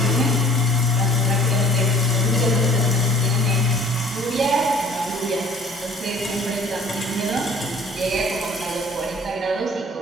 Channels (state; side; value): normal; both; correlation 0.51